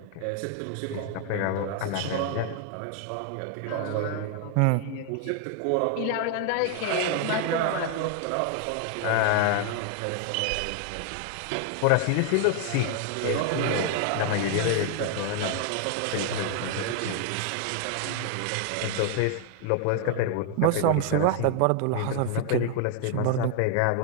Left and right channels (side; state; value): both; different; correlation 0.00